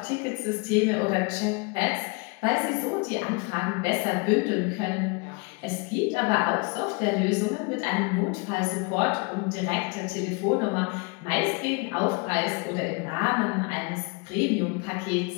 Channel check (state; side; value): quieter; right; 31.4 dB